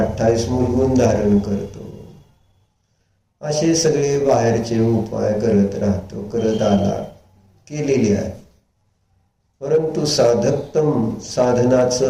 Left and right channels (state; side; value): identical; both; correlation 1.00